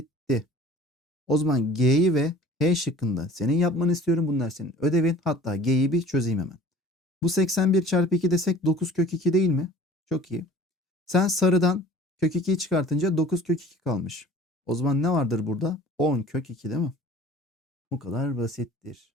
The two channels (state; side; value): normal; both; correlation 0.47